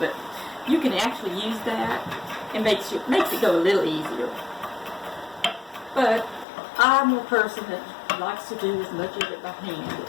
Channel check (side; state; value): right; drops out; at 6.5 s